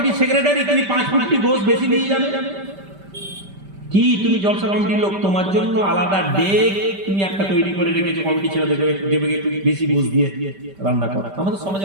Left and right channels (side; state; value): left; late; 5.1 ms